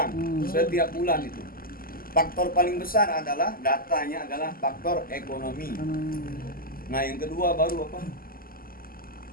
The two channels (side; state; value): right; late; 0.42 ms